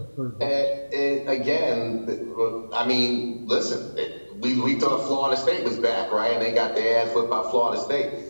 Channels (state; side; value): inverted; both; correlation -1.00